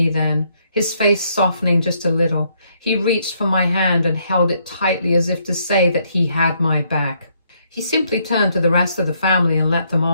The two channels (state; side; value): inverted; both; correlation -0.72